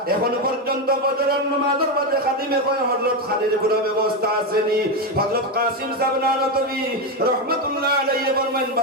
এখন পর্যন্ত ফজরের নামাজের বাদে খাদিমে কয় হযরত খানির কোনো ব্যবস্থা আসেনি হযরত কাসিম সাহেব নানতবী রাহমাতুল্লাহ আলাইহি ফরমান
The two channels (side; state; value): both; normal; correlation 0.09